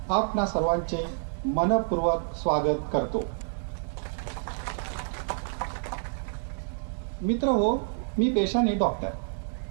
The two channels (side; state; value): left; silent; digital silence